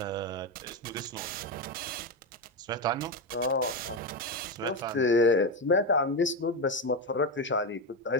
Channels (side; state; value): both; normal; correlation 0.12